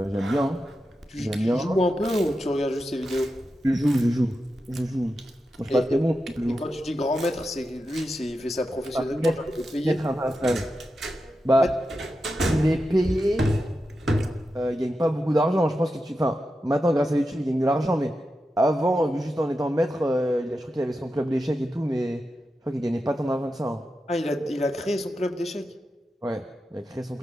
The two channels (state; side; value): normal; both; correlation 0.90